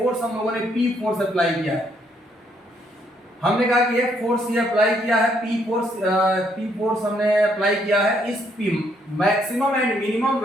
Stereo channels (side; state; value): both; normal; correlation 0.71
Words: हम लोगों ने P फोर्स अप्लाई किया है। हमने कहा कि एक फोर्स ये अप्लाई किया है, P फोर्स हमने अप्लाई किया है। इस P maximum and minimum